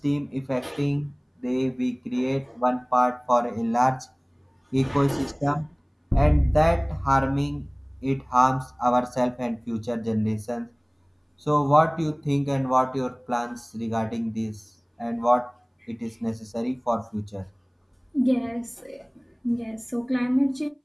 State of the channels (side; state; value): both; identical; correlation 1.00